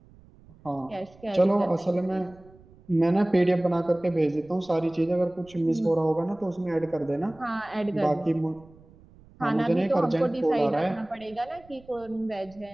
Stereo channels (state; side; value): noise; right; rumble, 25 dB below the sound